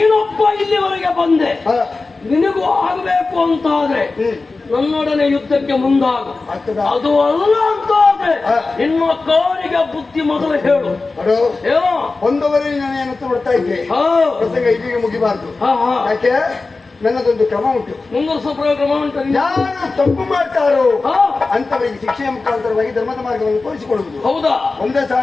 ಇಲ್ಲಿವರೆಗೆ ಬಂದೆ, ನಿನಗೂ ಆಗಬೇಕು ಅಂತಾದ್ರೆ ನನ್ನೊಡನೆ ಯುದ್ಧಕ್ಕೆ ಮುಂದಾಗು. ಅದು ಅಲ್ಲ ಅಂತಾದ್ರೆ ನಿನ್ನ ಕಾರಿಗೆ ಬುದ್ಧಿ ಮೊದಲು ಹೇಳು. ಏನೋ ಒಂದವರೇ ನಾನು ಏನಂತ ಬಿಡ್ತಾ ಇದ್ದೆ, ಪ್ರಸಂಗ ಇದೀಗ ಮುಗಿಬಾರ್ದು. ಯಾಕೆ? ನನ್ನದೊಂದು ಕ್ರಮ ಉಂಟು, ಮುಂದುವರಿಸುವ ಕ್ರಮ ಉಂಟು. ಯಾರು ತಪ್ಪು ಮಾಡ್ತಾರೋ ಅಂತವರಿಗೆ ಶಿಕ್ಷೆಯ ಮುಖಾಂತರವಾಗಿ ಧರ್ಮದ ಮಾರ್ಗವನ್ನು ತೋರಿಸಿಕೊಳ್ಳುವುದು. ಹೌದಾ? ಒಂದೇ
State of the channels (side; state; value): right; quieter; 3.7 dB